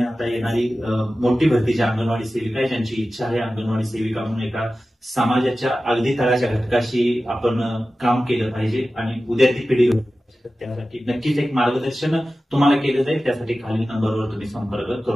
येणारी मोठी भरती ज्या अंगणवाडी सेविका आहे, ज्यांची इच्छा आहे अंगणवाडी सेविका म्हणून एका समाजाच्या अगदी तळाच्या घटकाशी आपण काम केलं पाहिजे आणि उद्याची पिढी त्यासाठी नक्कीच एक मार्गदर्शन तुम्हाला केलं जाईल. त्यासाठी खालील नंबरवर तुम्ही संपर्क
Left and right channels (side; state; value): both; normal; correlation 0.95